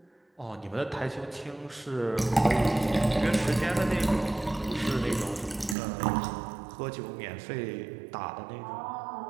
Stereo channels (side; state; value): left; drops out; at 5.8 s